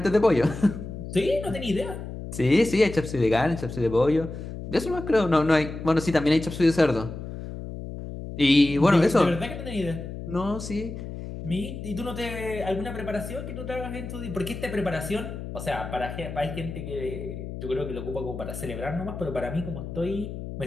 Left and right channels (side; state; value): left; noise; hum, 9 dB below the sound